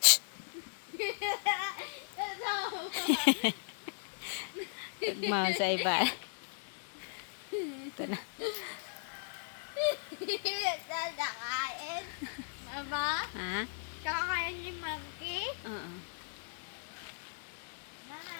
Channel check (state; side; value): silent; right; 53 dB below the other